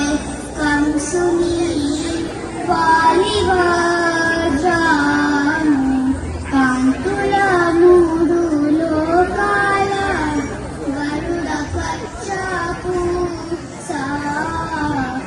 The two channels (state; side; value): identical; both; correlation 1.00